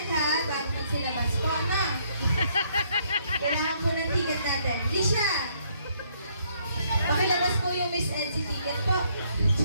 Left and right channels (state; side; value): inverted; both; correlation -0.69